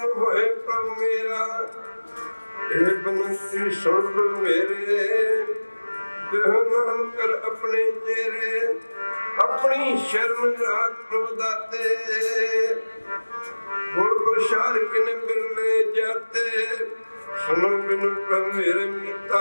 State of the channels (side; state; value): both; inverted; correlation -1.00